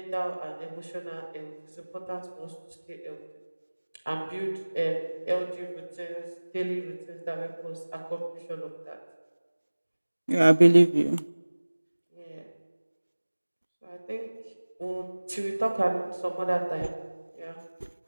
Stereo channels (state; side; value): inverted; both; correlation -1.00